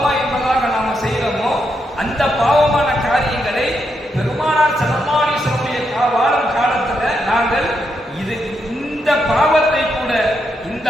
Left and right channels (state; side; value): normal; both; correlation 0.81